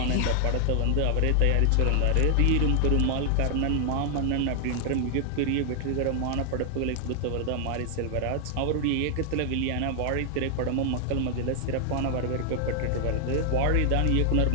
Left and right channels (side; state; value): both; different; correlation 0.00